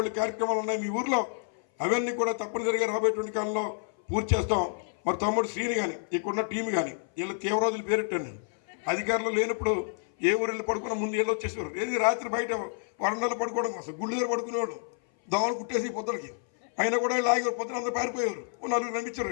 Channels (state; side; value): silent; right; 57 dB below the other